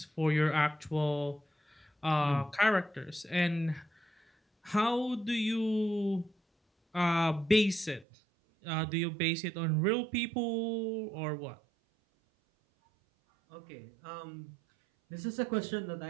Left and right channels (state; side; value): drops out; left; at 8.1 s